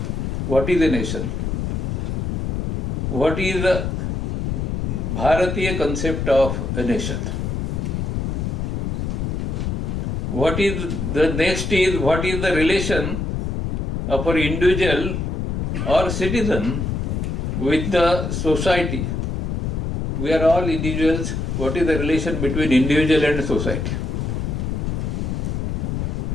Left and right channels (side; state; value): left; noise; rumble, 1 dB below the sound